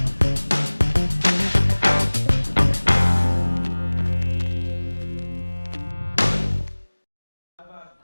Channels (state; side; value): inverted; both; correlation -1.00